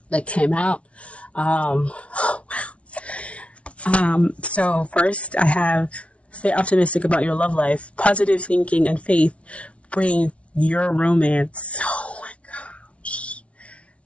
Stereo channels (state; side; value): late; right; 0.062 ms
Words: that came out. So first I have stay optimistic about your love life. Positive thinking and faith bring your romance. Oh my gosh.